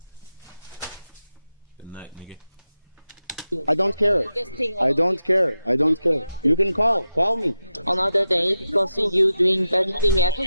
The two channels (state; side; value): inverted; both; correlation -0.89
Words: testing. I don't care. Testing I don't care. I don't care. You can call me. Another day because you doing bad thing at